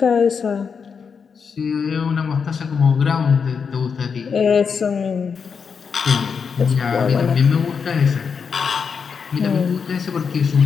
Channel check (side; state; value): right; quieter; 6.0 dB